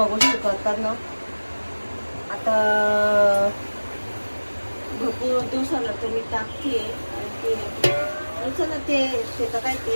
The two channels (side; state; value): both; inverted; correlation -1.00